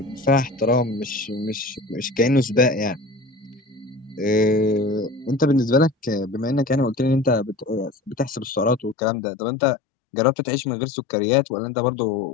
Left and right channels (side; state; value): right; drops out; at 9.0 s